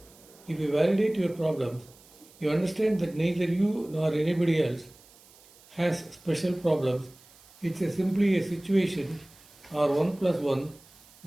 If you validate your problems, you understand that neither you nor anybody else has special problems. It's simply a situation, or 1 plus 1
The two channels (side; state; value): right; noise; hiss, 26 dB below the sound